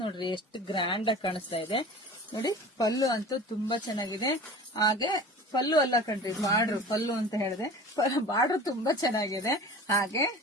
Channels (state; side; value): normal; both; correlation 0.39